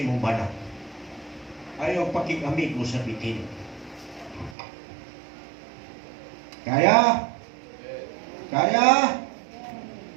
imong bana. Ayaw pakig-amigo sa bitin. Kaya? Kaya?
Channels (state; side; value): drops out; left; at 4.5 s